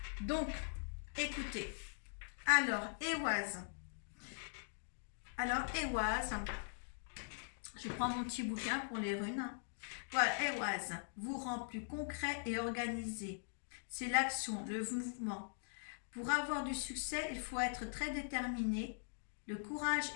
Donc, écoutez. Alors, Ehwaz. Je prends mon petit bouquin pour les runes. Voilà, Ehwaz vous rend plus concret et organisé. C'est l'action, le mouvement. Pour avoir du succès, il faut être très déterminé. Le courage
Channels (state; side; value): silent; right; digital silence